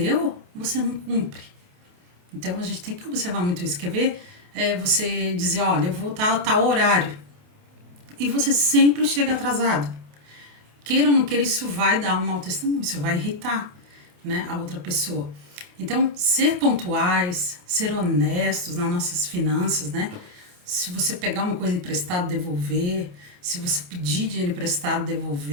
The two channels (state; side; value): late; left; 28 ms